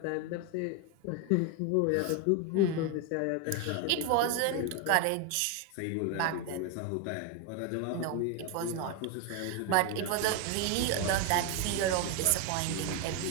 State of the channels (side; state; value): both; different; correlation 0.01